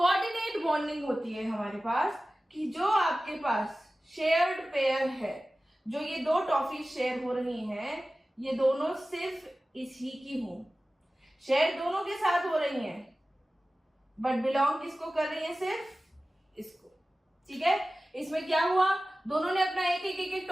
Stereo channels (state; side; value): normal; both; correlation 0.96